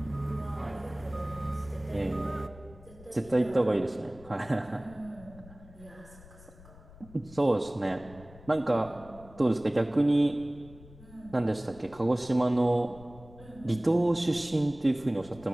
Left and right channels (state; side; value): noise; left; rumble, 21 dB below the sound